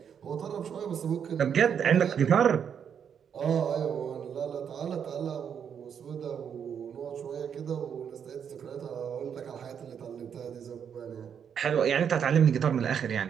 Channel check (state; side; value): quieter; left; 7.8 dB